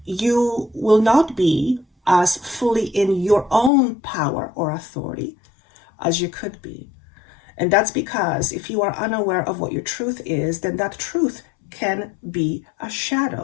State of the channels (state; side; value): drops out; right; at 3.7 s